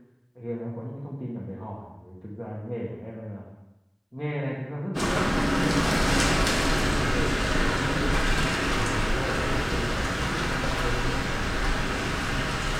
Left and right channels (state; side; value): identical; both; correlation 1.00